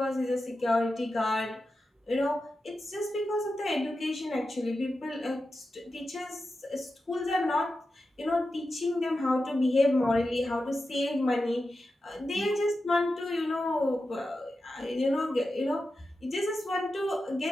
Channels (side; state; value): both; normal; correlation 0.91